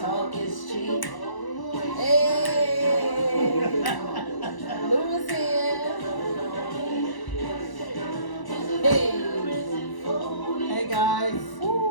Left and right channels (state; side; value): late; right; 1.0 ms